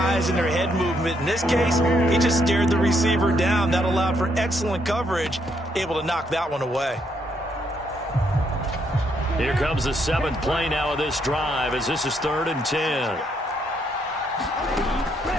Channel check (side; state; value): both; normal; correlation 0.74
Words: and their head movement. In this case, he just stared the receiver down. That allowed for excellent coverage, able to knock that one away. Here comes the 7th play now of this drive as this is 3rd and 10.